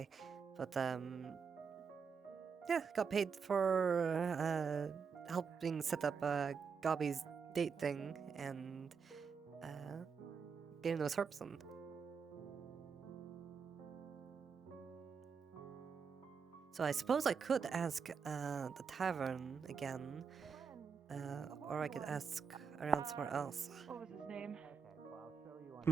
but yeah, got paid for helping set up Gobby's date thing and getting those herps on. So I suppose I could ask the tavern again, or I could ask around somewhere else. What was his name?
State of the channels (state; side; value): quieter; left; 6.0 dB